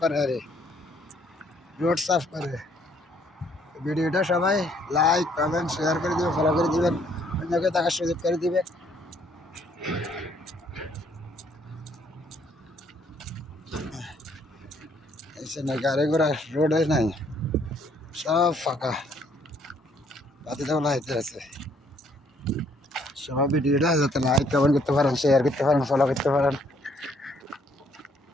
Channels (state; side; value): normal; both; correlation 0.66